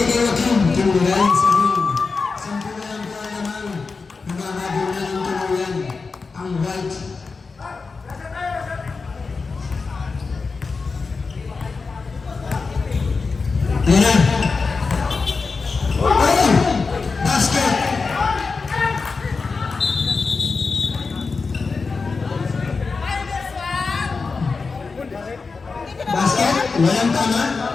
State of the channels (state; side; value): quieter; right; 4.5 dB